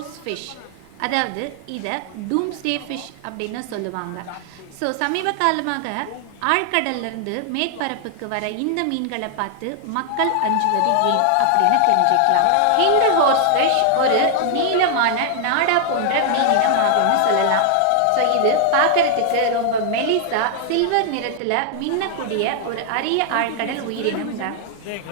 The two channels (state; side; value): different; both; correlation 0.00